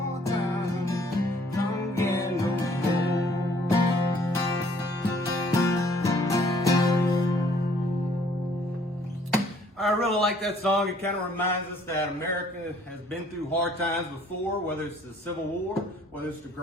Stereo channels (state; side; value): normal; both; correlation 0.60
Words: times come again no more. I really like that song. It kind of reminds us that America has been through hard times before, whether it's the Civil War, whether it's the